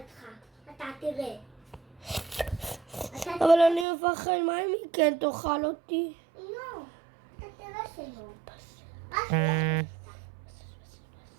אתה תראה. אבל אני מפחד, מה אם היא כן תאכל אותי? לא, אתה תראה שלא.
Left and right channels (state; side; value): drops out; left; at 3.9 s